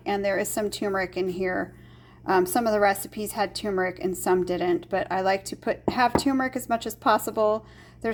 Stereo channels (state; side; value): identical; both; correlation 1.00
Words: And there is some turmeric in here. Some of the recipes had turmeric and some didn't, but I like to have turmeric as much as possible.